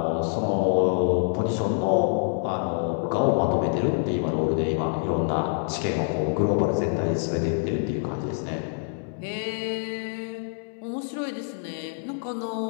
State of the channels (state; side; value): silent; right; 60 dB below the other